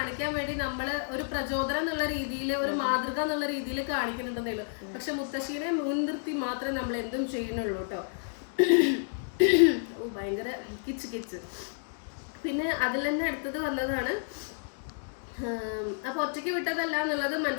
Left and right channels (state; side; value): silent; right; digital silence